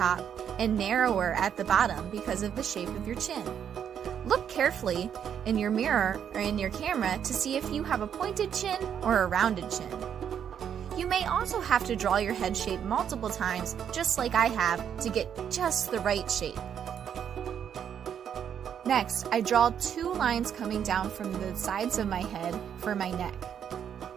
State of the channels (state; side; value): quieter; left; 8.6 dB